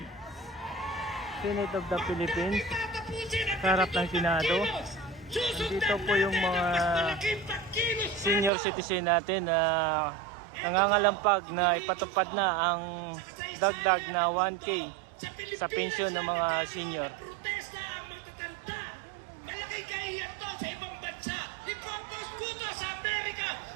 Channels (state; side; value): drops out; left; at 8.5 s